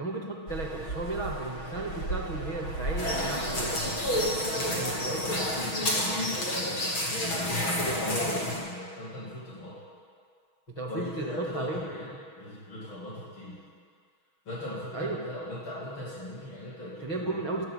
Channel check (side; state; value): right; late; 6.3 ms